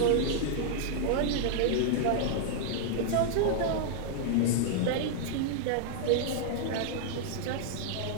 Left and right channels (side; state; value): both; different; correlation -0.01